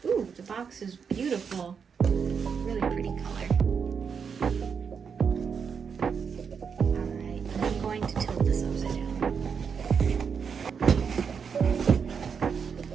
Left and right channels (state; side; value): quieter; left; 6.4 dB